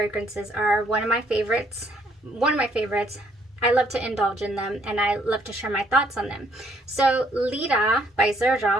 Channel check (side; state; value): both; normal; correlation 0.67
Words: are one of my favorites. I love to indulge in them, and I love to share my thoughts on them. So Lira by